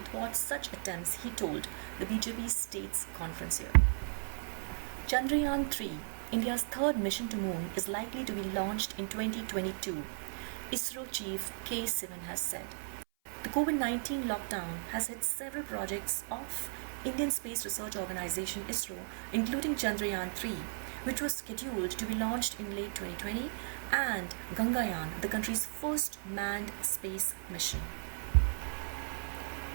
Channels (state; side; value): silent; left; 54 dB below the other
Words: such attempts, he told the BJP States Conference here. Chandrayaan-3, India's third mission to moon, is likely to be launched in 2022, ISRO chief K. Sivan has said. The COVID-19 lockdown has hit several projects of Indian Space Research Organization ISRO, including Chandrayaan-3, which was scheduled to be launched in late 2020, and Gangayaan, the country's first manned space mission.